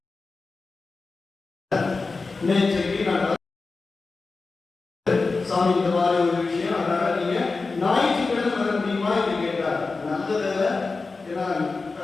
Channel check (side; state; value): right; quieter; 4.0 dB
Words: நேற்றைக்கு நான் சாமி இந்த மாதிரி ஒரு விஷயம், அதனால நீங்க ஞாயிற்றுக்கிழமை வர முடியுமா என்று கேட்டார். நல்லதில்லை, ஏன்னா